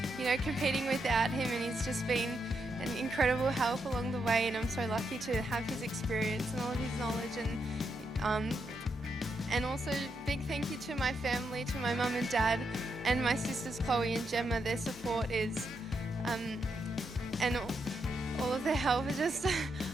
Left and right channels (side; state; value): both; normal; correlation 0.82